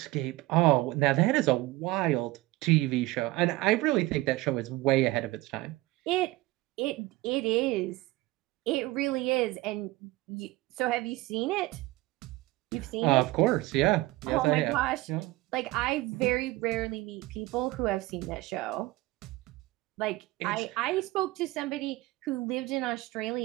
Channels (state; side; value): quieter; left; 19.4 dB